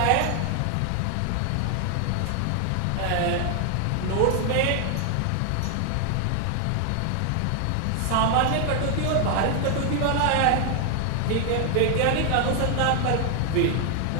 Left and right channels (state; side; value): different; both; correlation 0.00